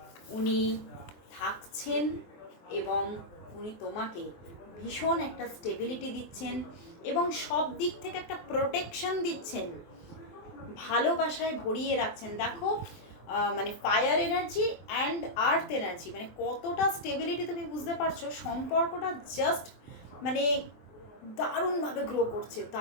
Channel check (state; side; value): late; right; 23 ms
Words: উনি থাকছেন, এবং উনি তোমাকে ভীষণ একটা স্টেবিলিটি দিচ্ছেন, এবং সব দিক থেকে একটা প্রোটেকশন দিচ্ছেন, ভালোবাসায় ভরিয়ে রাখছেন। দেখো মানে fire energy and earth energy, মানে কতটা স্টেবিলিটি তুমি বুঝতে পারছো। সম্পর্কটা জাস্ট মানে দারুণভাবে গ্রো করছে,